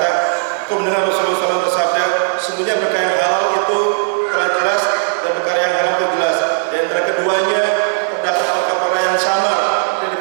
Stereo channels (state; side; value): silent; left; 55 dB below the other